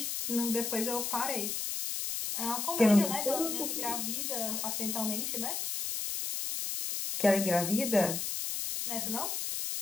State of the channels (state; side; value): noise; left; hiss, 2 dB below the sound